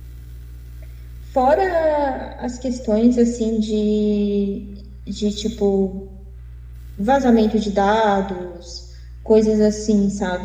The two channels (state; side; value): identical; both; correlation 1.00